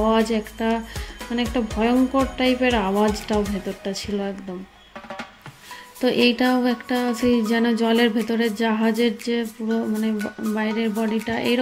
একটা, মানে একটা ভয়ঙ্কর টাইপের আওয়াজটাও ভেতরটা ছিল একদম। তো এইটাও একটা সেই যেন জলের ভেতরে জাহাজের যে পুরো মানে বাইরের বডিটা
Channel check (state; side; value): identical; both; correlation 1.00